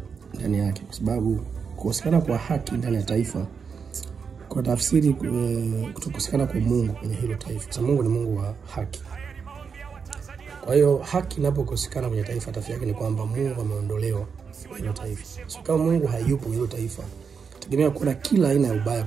ndani yake, kwa sababu kukosekana kwa haki ndani ya taifa kwa tafsiri kutokosekana kwa Mungu kwenye hilo taifa. Sababu Mungu ni Mungu wa haki. Kwa hiyo haki inapokosekana kwenye taifa, tafsiri yake ni kwamba Mungu ameondolewa kwenye hilo taifa. So kama Mungu hayupo kwenye hilo taifa, tegemea kuna kila aina ya ubaya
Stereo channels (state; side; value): quieter; left; 6.0 dB